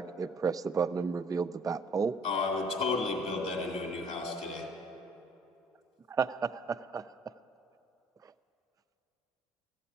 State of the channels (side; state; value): both; normal; correlation 0.57